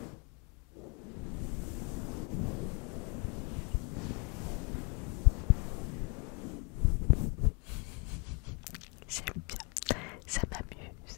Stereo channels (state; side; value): quieter; right; 33.7 dB